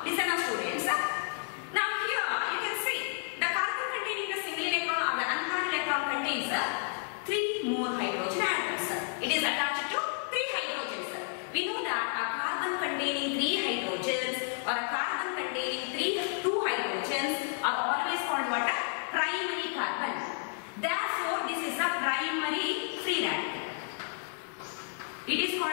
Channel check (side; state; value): right; silent; 57 dB below the other